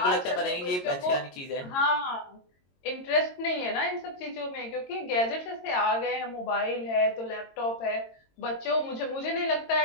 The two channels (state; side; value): late; right; 22 ms